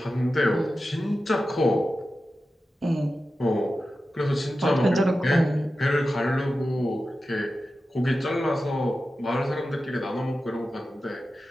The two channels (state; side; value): normal; both; correlation 0.93